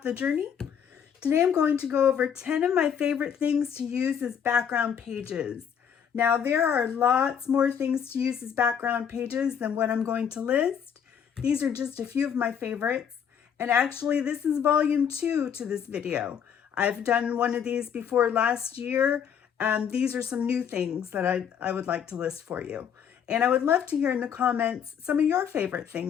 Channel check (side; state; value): right; quieter; 8.0 dB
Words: the journey. Today I'm going to go over 10 of my favorite things to use as background pages. Now there are lots more things to use as background pages than what I'm going to list. These are just a few of my favorites, and actually this is volume 2 to this video. I've done one of these before last year, and these are some new things that I would like to list for you. And I would love to hear in the comments some of your favorite